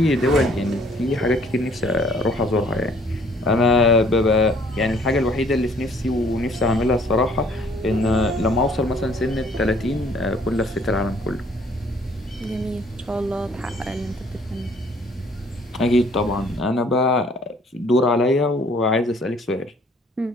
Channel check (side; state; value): both; normal; correlation 0.59